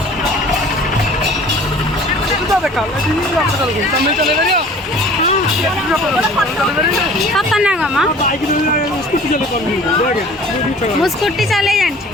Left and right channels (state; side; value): normal; both; correlation 0.47